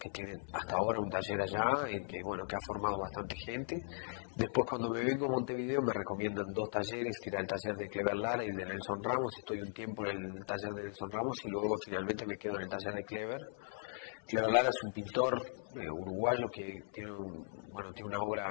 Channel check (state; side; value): silent; right; 52 dB below the other